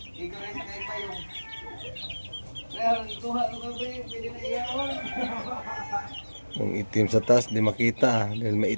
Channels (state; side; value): inverted; both; correlation -1.00